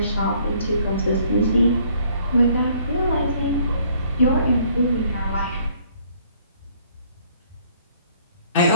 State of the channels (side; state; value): both; inverted; correlation -0.62